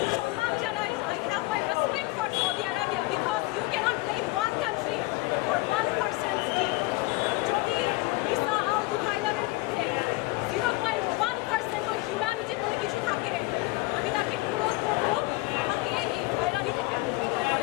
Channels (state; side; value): quieter; right; 21.7 dB